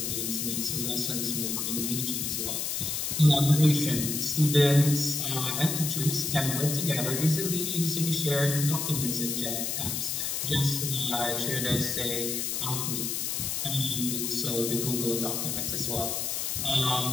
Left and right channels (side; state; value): left; noise; hiss, 1 dB below the sound